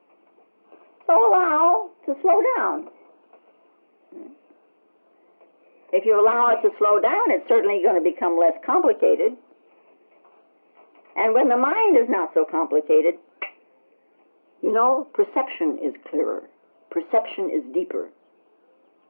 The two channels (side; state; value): both; inverted; correlation -1.00